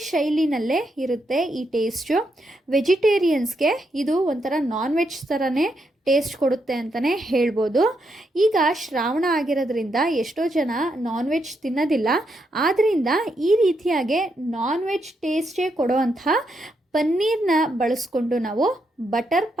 ಶೈಲಿನಲ್ಲೇ ಇರುತ್ತೆ ಈ ಟೇಸ್ಟು. ವೆಜಿಟೇರಿಯನ್ಸ್ಗೆ ಇದು ಒಂಥರ ನಾನ್ ವೆಜ್ ಥರನೇ ಟೇಸ್ಟ್ ಕೊಡುತ್ತೆ ಅಂತಲೇ ಹೇಳ್ಬೋದು. ಈಗ ಶ್ರಾವಣ ಆಗಿರೋದ್ರಿಂದ ಎಷ್ಟೋ ಜನ ನಾನ್ ವೆಜ್ ತಿನ್ನೋದಿಲ್ಲ. ಆದ್ದರಿಂದ ಈ ರೀತಿಯಾಗಿ ನಾನ್ ವೆಜ್ ಟೇಸ್ಟೇ ಕೊಡುವಂಥ ಪನ್ನೀರ್ನ ಬಳಸ್ಕೊಂಡು ನಾವು ಬಟರ್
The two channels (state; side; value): normal; both; correlation 0.80